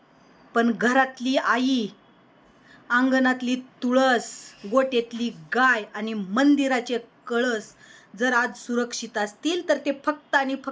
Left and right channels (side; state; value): both; identical; correlation 1.00